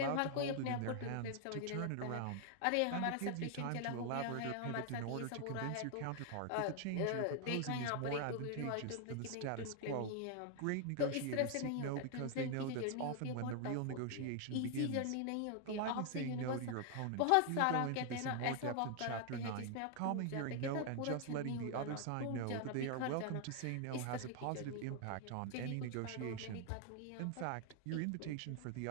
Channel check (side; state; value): both; different; correlation 0.00